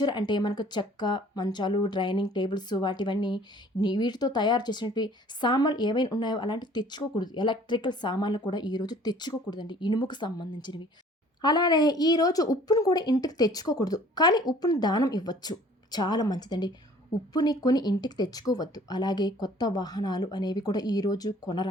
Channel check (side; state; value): both; normal; correlation 0.53